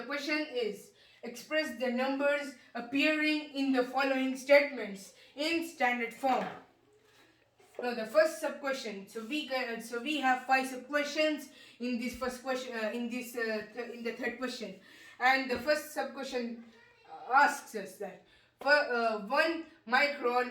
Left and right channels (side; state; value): both; identical; correlation 1.00